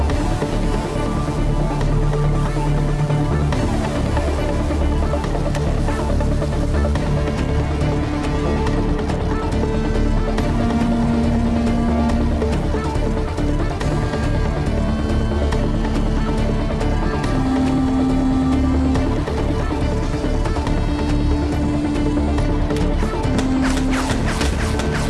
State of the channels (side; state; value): both; identical; correlation 1.00